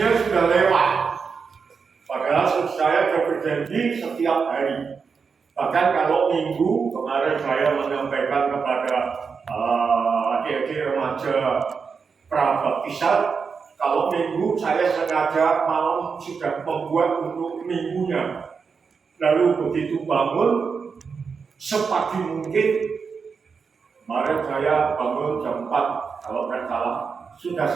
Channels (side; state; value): left; quieter; 5.5 dB